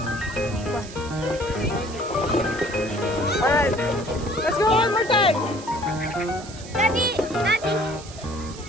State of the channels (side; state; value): right; noise; hiss, 16 dB below the sound